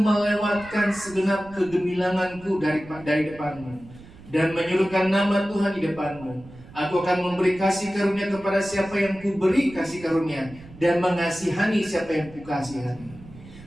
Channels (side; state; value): right; noise; rumble, 19 dB below the sound